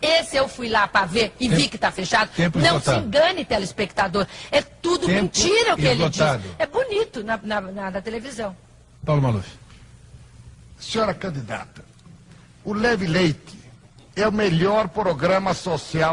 esse eu fui lá para ver e vi que está fechado. Não se engane, telespectador. É tudo mentira o que ele diz. É bonito na televisão. Paulo Maluf. Senhora candidata, o Leve Leite é o melhor programa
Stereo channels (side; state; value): both; identical; correlation 1.00